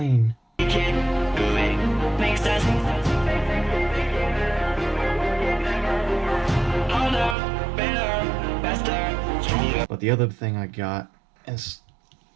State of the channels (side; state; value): left; drops out; at 7.4 s